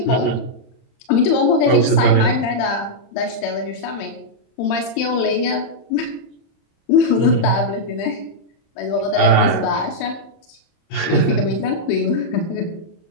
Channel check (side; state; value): right; late; 30 ms